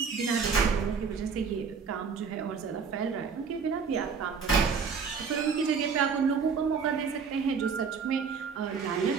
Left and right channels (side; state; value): left; quieter; 5.8 dB